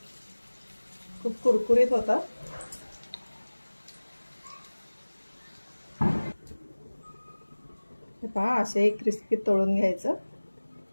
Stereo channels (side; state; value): both; inverted; correlation -1.00